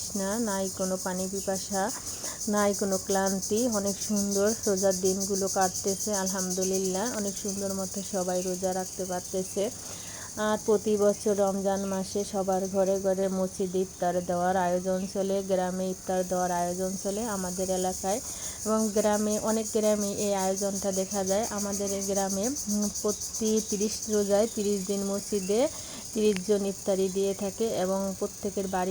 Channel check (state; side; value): identical; both; correlation 1.00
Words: নাই কোনো পানি পিপাসা, নাই কোনো ক্লান্তি। অনেক সুন্দর রোজার দিনগুলো কাটতেছে আলহামদুলিল্লাহ। অনেক সুন্দর মতো সবাই রোজা রাখতে পারতেছে। আর প্রতি বছর রমজান মাসে সবার ঘরে ঘরে মসজিদে ইফতার দেওয়ার আয়োজন চলে, গ্রামে ইফতার দেওয়ার আয়োজন চলে আমাদের এলাকায়। এবং গ্রামে, অনেক গ্রামে এই আয়োজনটা দেখা যায়। আমাদের এই গ্রামে প্রতি 30 রোজায় 30 দিন মসজিদে 30 জন ইফতারি দিয়ে থাকে এবং প্রত্যেকের